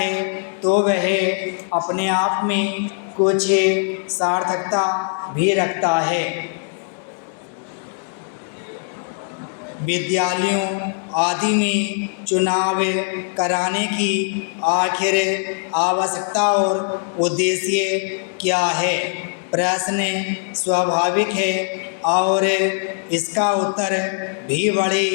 तो वह अपने आप में कुछ सार्थकता भी रखता है। विद्यालयों आदि में चुनाव कराने की आखिर आवश्यकता और उद्देश्य क्या है? प्रश्न स्वाभाविक है और इसका उत्तर भी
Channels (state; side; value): silent; right; 61 dB below the other